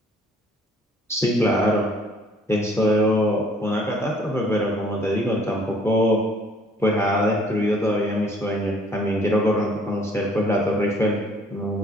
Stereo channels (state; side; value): normal; both; correlation 0.59